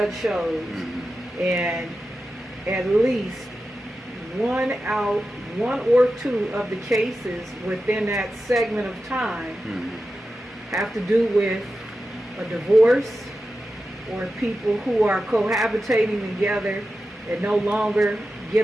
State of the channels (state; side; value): normal; both; correlation 0.92